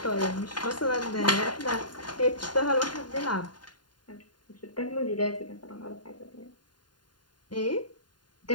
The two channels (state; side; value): late; right; 0.71 ms